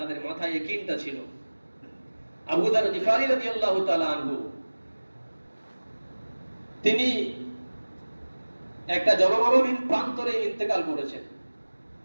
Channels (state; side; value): inverted; both; correlation -1.00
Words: মাথায় ইয়াকিনটা ছিল। আবু যার গিফারী রাদিয়াল্লাহু তাআলা আনহু, তিনি একটা জনমানবহীন প্রান্তরে ইন্তেকাল করেছেন।